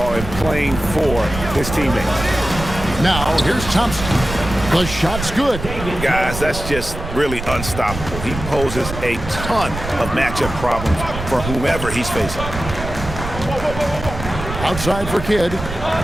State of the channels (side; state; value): right; noise; rumble, 8 dB below the sound